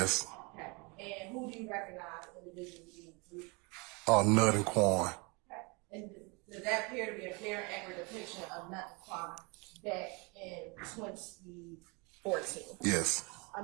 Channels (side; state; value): left; quieter; 29.5 dB